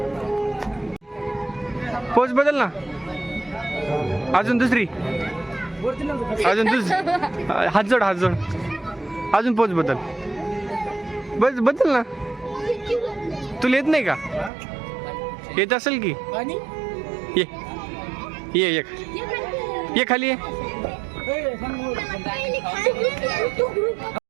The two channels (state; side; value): drops out; left; at 14.5 s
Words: पोच बदल ना, अजून दुसरी, अजून हात जोड, हात जोड, अजून पोच बदल, बदल ना. तुला येत नाही का? येत असेल की. ये ये खाली ये.